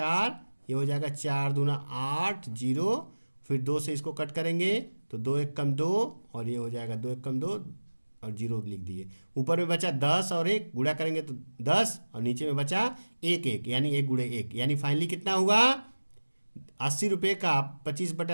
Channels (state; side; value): inverted; both; correlation -1.00